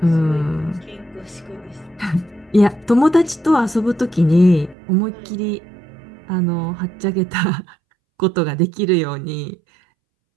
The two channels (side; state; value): left; drops out; at 4.8 s